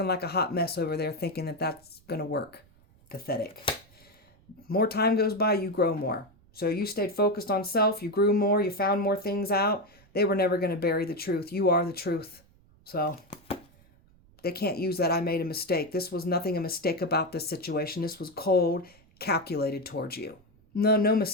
like a hot mess over there thinking that that's going to work. Pathetic. More time goes by, you grow more. So you stayed focused on self. You grew more. You found more things out. They were never going to bury the truth. You are the truth. So they can't use that I made a mistake. This was nothing a mistake about this situation. This was cold, calculated towards you. No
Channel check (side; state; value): right; noise; rumble, 29 dB below the sound